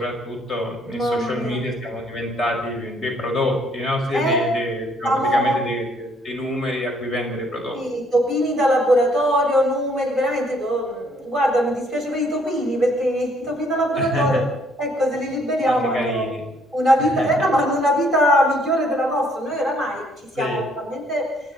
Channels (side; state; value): both; normal; correlation 0.65